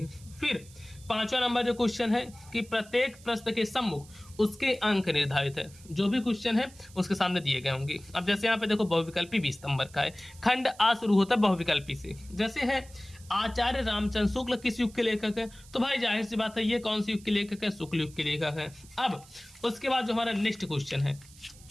फिर 5वां नंबर जो क्वेश्चन है कि प्रत्येक प्रश्न के सम्मुख उसके अंक निर्धारित है, जो भी क्वेश्चन है उसके सामने दिए गए होंगे। अब जैसे यहाँ पे देखो बहुविकल्पी 20 नंबर का है, खंड आ शुरू होता है बहुविकल्पी से, जैसे है आचार्य रामचंद्र शुक्ल किस युग के लेखक है, तो भाई जाहिर सी बात है ये कौन सी युग के लेखक है, शुक्ल युग के लेखक है। अब उसके बाद जो हमारा नेक्स्ट क्वेश्चन है,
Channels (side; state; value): right; noise; hiss, 22 dB below the sound